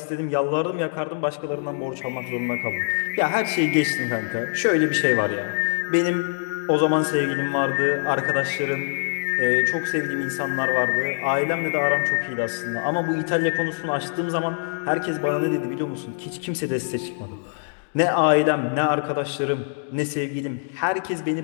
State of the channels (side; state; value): right; silent; digital silence